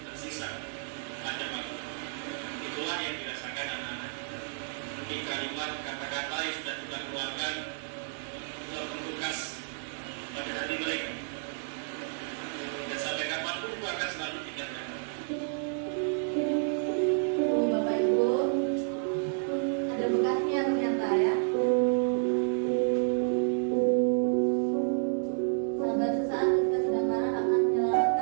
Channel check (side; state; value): left; silent; digital silence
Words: tersisa pada paku. Itulah yang dirasakan anak-anak. Mungkin kalimat kata-kata yang sudah kita keluarkan telah membekas pada hati mereka. Dan sampai kapanpun itu akan selalu diingatkan. Bapak Ibu, ada bekasnya ternyata ya. Sabar sesaat ketika sedang marah akan